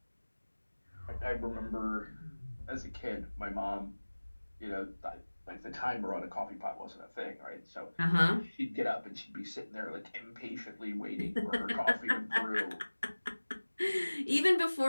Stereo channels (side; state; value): both; inverted; correlation -1.00